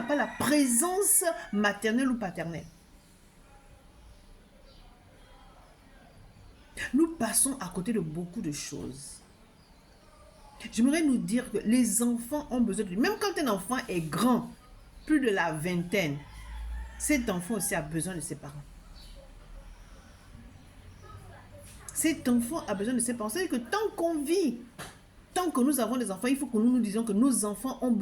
pas la présence maternelle ou paternelle. Nous passons à côté de beaucoup de choses. J'aimerais nous dire que les enfants ont besoin de... Même quand un enfant est grand, plus de la vingtaine, cet enfant aussi a besoin de ses parents. Cet enfant a besoin de ses parents. C'est-à-dire que tant qu'on vit, tant que nous avons des enfants, il faut que nous nous disions que nos enfants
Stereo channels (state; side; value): identical; both; correlation 1.00